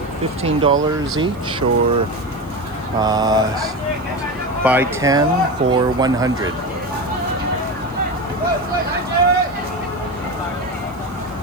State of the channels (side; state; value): left; noise; hiss, 28 dB below the sound